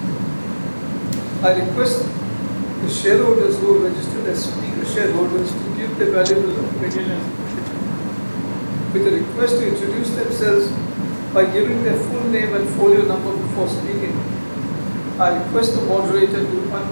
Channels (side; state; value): both; inverted; correlation -1.00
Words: I request the shareholders who are registered as speaker shareholders to give their valuable opinion with a request to introduce themselves by giving their full name and folio number before speaking. I request the moderator to